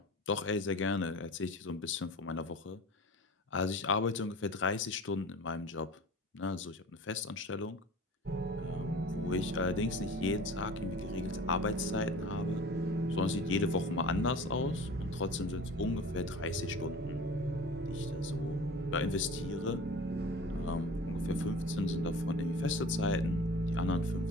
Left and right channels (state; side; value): normal; both; correlation 0.39